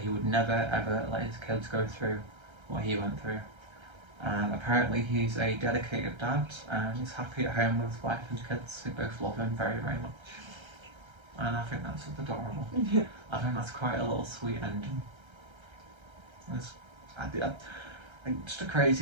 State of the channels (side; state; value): left; late; 1.3 ms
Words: he would never ever let his kids go through what he went through. And apparently he's a dedicated dad, and he's happy at home with his wife and kids, who both love him very, very much. And I think that's adorable. Yeah. I think that's quite a little sweet ending. Just a